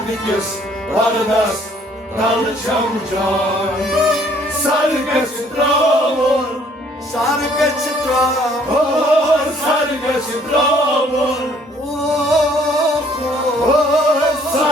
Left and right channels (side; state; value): both; normal; correlation 0.61